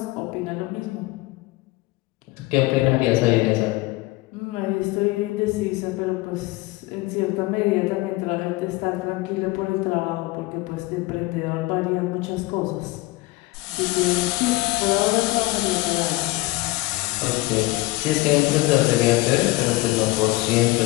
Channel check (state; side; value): quieter; right; 20.6 dB